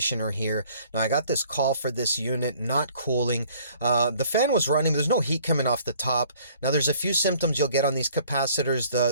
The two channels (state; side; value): inverted; both; correlation -0.56